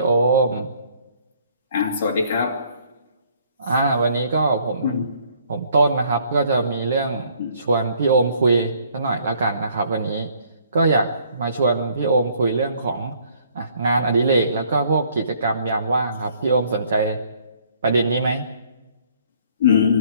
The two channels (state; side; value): inverted; both; correlation -0.62